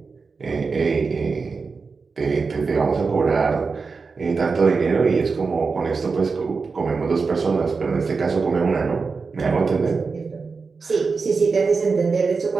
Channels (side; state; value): left; quieter; 4.7 dB